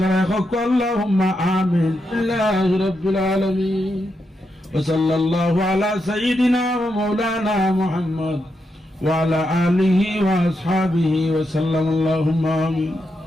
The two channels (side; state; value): both; normal; correlation 0.84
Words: আল্লাহুম্মা আমিন। আল্লাহ রাব্বুল আলামিন। وصلى الله على سيدنا ومولانا محمد وعلى آله وأصحابه وسلم اللهم آمين.